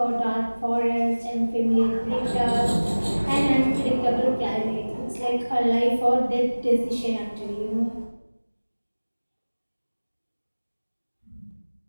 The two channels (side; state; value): both; inverted; correlation -1.00